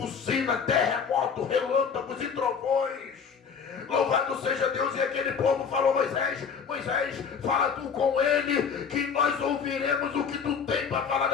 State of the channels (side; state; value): right; quieter; 6.4 dB